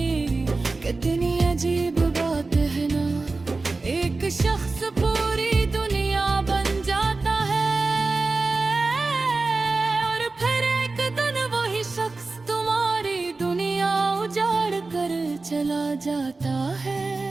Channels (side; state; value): left; quieter; 3.6 dB